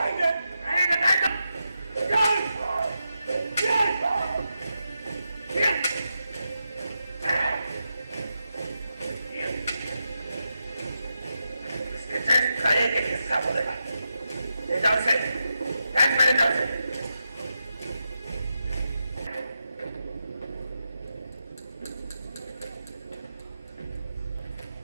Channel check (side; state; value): both; inverted; correlation -0.87